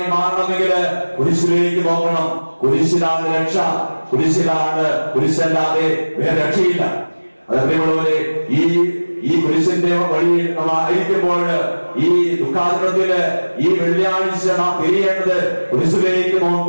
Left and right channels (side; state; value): both; inverted; correlation -1.00